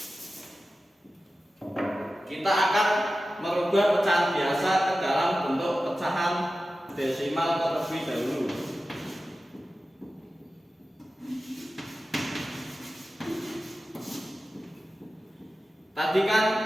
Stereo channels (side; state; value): both; normal; correlation 0.94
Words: Kita akan merubah pecahan biasa ke dalam bentuk pecahan desimal terlebih dahulu. Tadi kan